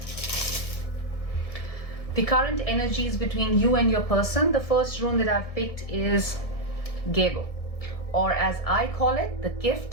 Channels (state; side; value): late; right; 1.6 ms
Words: The current energies between you and your person. The first rune that I've picked is Gebo, or as I call it, the